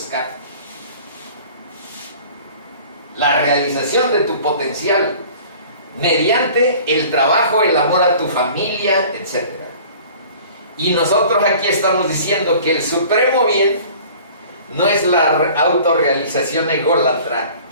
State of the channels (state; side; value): inverted; both; correlation -0.47